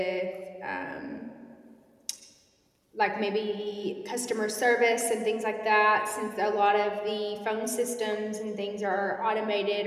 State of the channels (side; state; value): both; identical; correlation 1.00